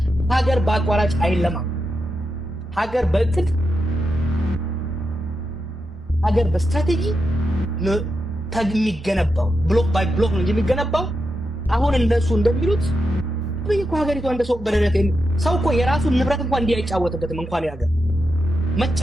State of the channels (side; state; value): both; normal; correlation 0.87